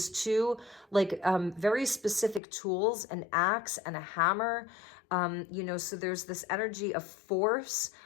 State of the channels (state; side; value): drops out; right; at 2.4 s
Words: two like very specific tools, an axe and a hammer. You know, so there's this energy of force.